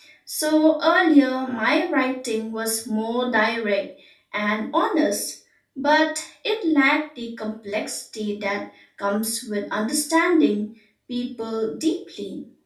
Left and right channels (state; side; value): identical; both; correlation 1.00